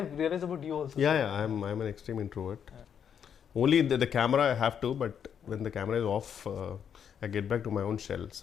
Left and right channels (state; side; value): quieter; right; 8.1 dB